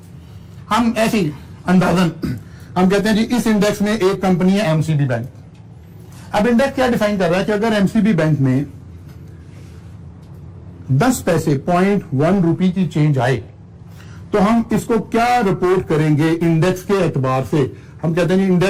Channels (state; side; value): identical; both; correlation 1.00